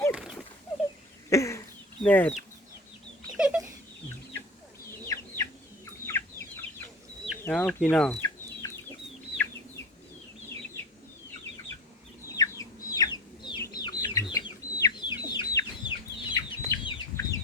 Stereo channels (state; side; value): normal; both; correlation 0.33